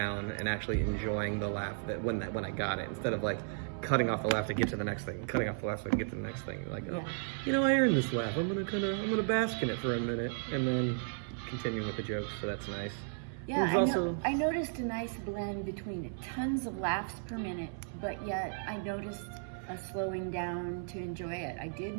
and actually enjoying the laugh when I got it, instead of like cutting off the laugh to get to the next thing, cutting off the laugh to get to the next thing. Like, oh, you know, I earned this laugh. I'm gonna bask in it for a minute, and then continue with the jokes. So that's nice. Yeah, I noticed a nice blend between tons of laughs per minute, but yet I noticed a slowing down to enjoy it. I did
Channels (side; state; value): left; silent; 55 dB below the other